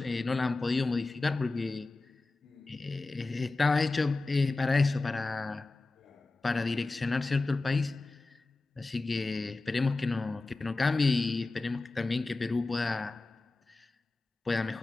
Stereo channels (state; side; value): quieter; right; 3.3 dB